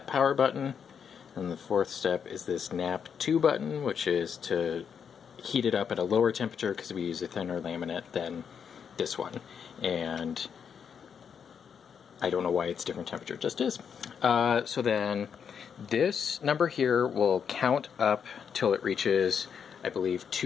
power button. And the 4th step is this nap 2 button, which is to heat it up at a lower temperature because we use a thinner laminate than this one. And I don't know why it's different temperature, it just is. So then this number here will count up till it reaches, I believe,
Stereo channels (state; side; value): quieter; right; 7.2 dB